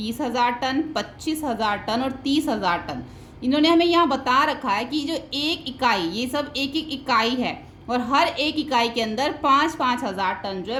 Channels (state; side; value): identical; both; correlation 1.00